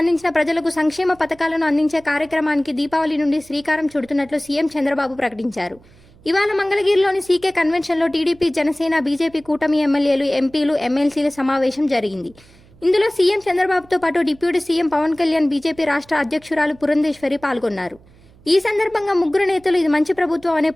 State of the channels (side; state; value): right; noise; hum, 27 dB below the sound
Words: ప్రజలకు సంక్షేమ పథకాలను అందించే కార్యక్రమానికి దీపావళి నుండి శ్రీకారం చుడుతున్నట్లు సీఎం చంద్రబాబు ప్రకటించారు. ఇవాళ మంగళగిరిలోని సీకే కన్వెన్షన్లో టీడీపీ, జనసేన, బీజేపీ కూటమి ఎమ్మెల్యేలు, ఎంపీలు, ఎమ్మెల్సీల సమావేశం జరిగింది. ఇందులో సీఎం చంద్రబాబుతో పాటు deputy CM Pawan Kalyan, BJP రాష్ట్ర అధ్యక్షురాలు పురంధేశ్వరి పాల్గొన్నారు. ఈ సందర్భంగా ముగ్గురు నేతలు ఇది మంచి ప్రభుత్వం అనే